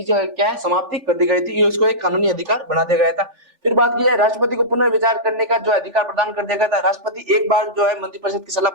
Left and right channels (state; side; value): late; left; 3.4 ms